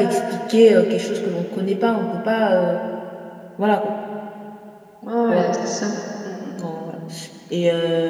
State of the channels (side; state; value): both; identical; correlation 1.00